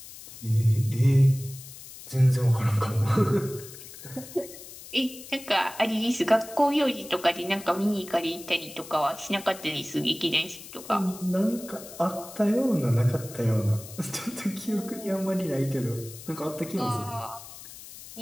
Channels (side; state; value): left; noise; hiss, 15 dB below the sound